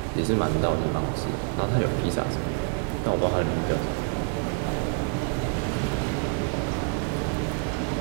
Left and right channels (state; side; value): quieter; left; 36.5 dB